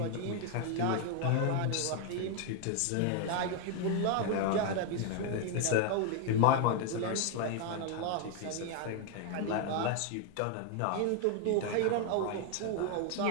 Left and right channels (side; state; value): both; different; correlation 0.01